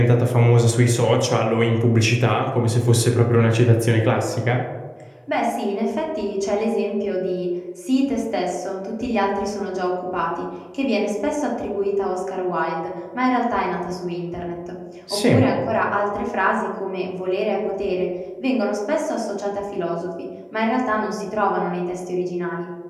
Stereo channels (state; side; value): identical; both; correlation 1.00